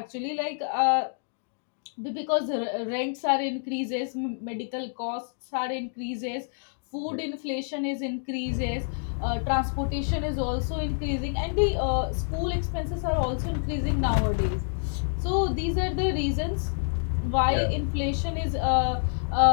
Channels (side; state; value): right; silent; digital silence